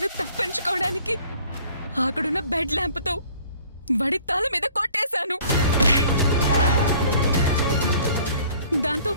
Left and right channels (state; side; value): inverted; both; correlation -0.54